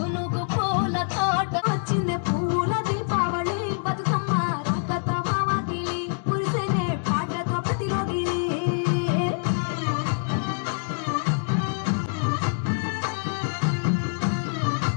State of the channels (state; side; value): silent; right; 61 dB below the other